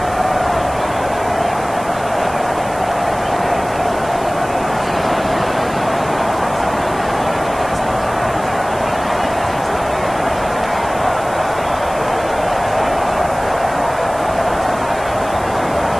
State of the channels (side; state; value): right; noise; hiss, 18 dB below the sound